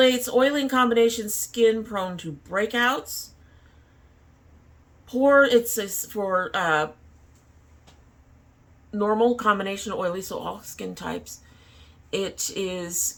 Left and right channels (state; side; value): identical; both; correlation 1.00